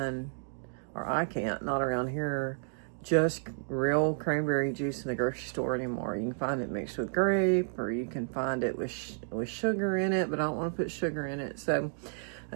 or I can't, not around here, just real cranberry juice in the grocery store anymore. You can find it mixed with grape, or you can find it with sugar in it, but I don't want to put sugar in it. So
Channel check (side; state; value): left; silent; digital silence